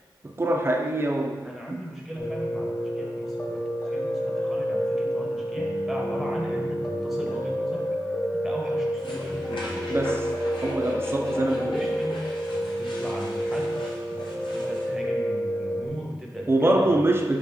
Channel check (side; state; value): both; normal; correlation 0.90